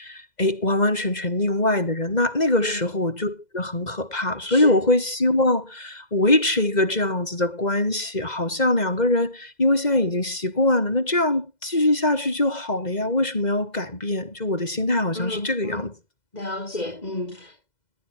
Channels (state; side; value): late; right; 2.0 ms